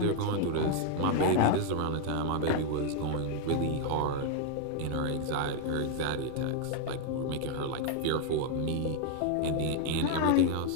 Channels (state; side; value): different; both; correlation 0.00